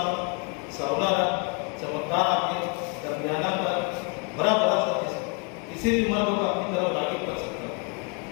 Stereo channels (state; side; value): quieter; right; 33.5 dB